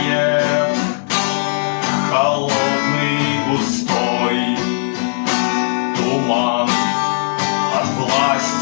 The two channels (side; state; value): right; silent; digital silence